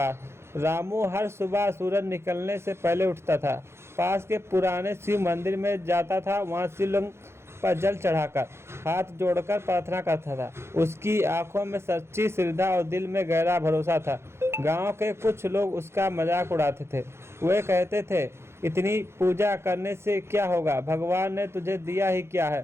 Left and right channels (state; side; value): late; left; 0.12 ms